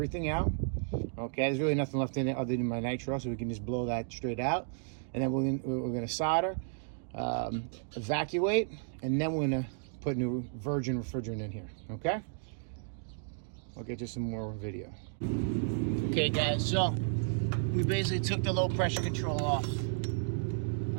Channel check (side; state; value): left; silent; digital silence